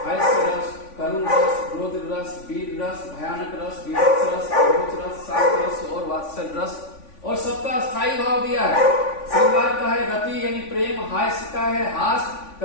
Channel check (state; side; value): late; right; 3.5 ms